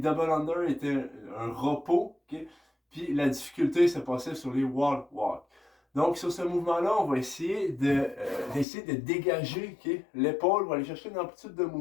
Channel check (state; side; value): drops out; right; at 8.7 s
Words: under étaient un repos. Okay? Puis la difficulté se passait sur les wall walk. Donc, sur ce mouvement-là, on va essayer de dégager l'épaule. On va aller chercher une amplitude de